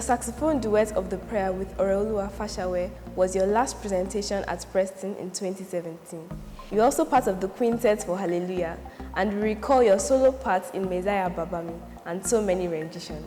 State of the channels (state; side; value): identical; both; correlation 1.00